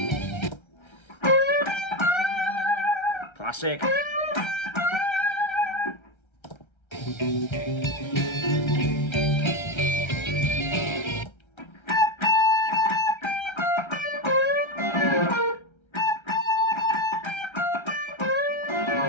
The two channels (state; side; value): late; right; 1.3 ms